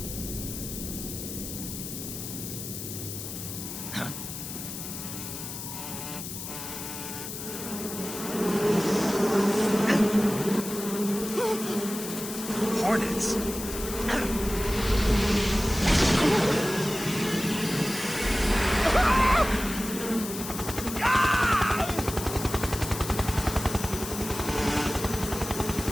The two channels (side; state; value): left; noise; hiss, 8 dB below the sound